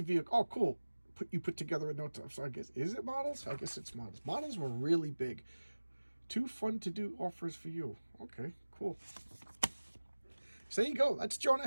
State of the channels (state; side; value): inverted; both; correlation -1.00